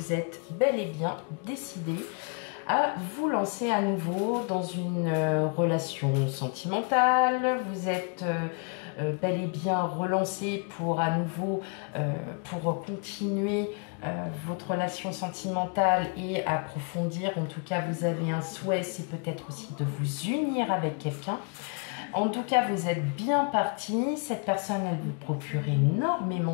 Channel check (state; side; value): quieter; right; 37.0 dB